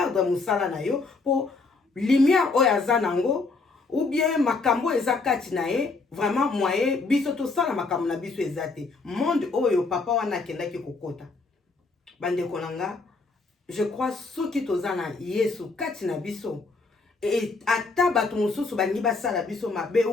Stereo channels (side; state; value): right; quieter; 3.9 dB